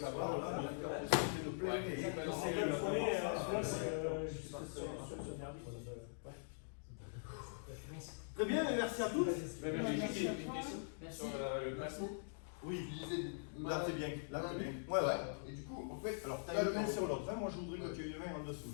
barre, là, c'est de plein. Ouais, Et c'est pas c'est normal. le premier, Très bien, et merci à tous. J'ai une question sur le maçon. Oui, Tu disais là c'est bien. Là c'est bien. Ouais, ouais. Et du coup, en fait, Alors, tu as une main sur l'autre. Moi, je voudrais que tu aies une main en dessous.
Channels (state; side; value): silent; right; digital silence